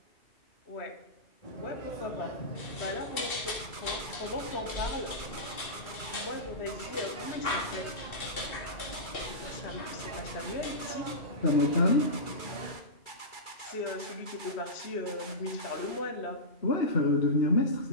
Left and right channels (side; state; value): right; late; 2.3 ms